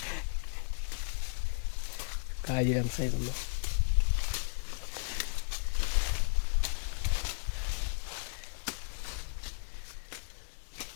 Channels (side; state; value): right; silent; 55 dB below the other